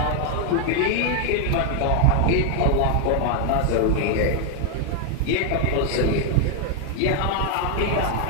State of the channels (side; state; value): both; different; correlation 0.00